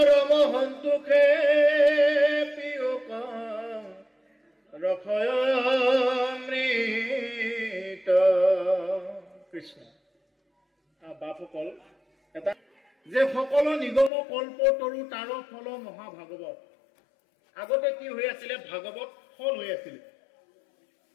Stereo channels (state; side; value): drops out; right; at 14.1 s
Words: সন্তোষে পিয়ুক ৰসয়মৃত কৃষ্ণ বাপসকল এটা যে সকলো নিগম কল্প তৰু তাৰ ফল মহাভাগৱত আগতে কি হৈ আছিলে ভাগৱত ফল হৈ আছিলে